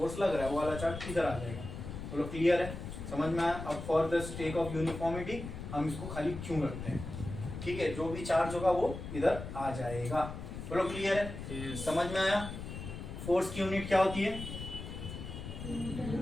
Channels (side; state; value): left; noise; rumble, 8 dB below the sound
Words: लग रहा है वो वाला चार्ज इधर आ जाएगा. बोलो क्लियर है, समझ में आया? अब for the sake of uniformity हम इसको खाली क्यों रखते हैं, ठीक है? जो भी चार्ज होगा वो इधर आ जाएगा. बोलो क्लियर है, समझ में आया? फोर्स की यूनिट क्या होती है,